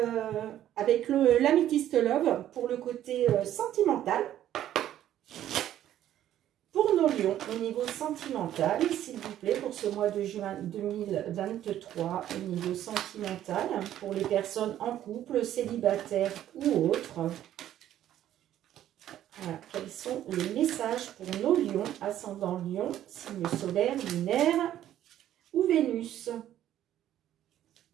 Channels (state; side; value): quieter; left; 11.9 dB